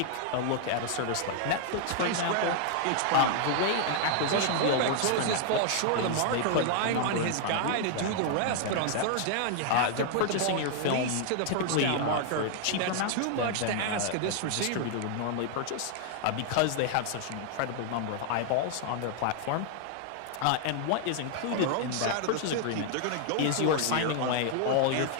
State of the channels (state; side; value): different; both; correlation 0.00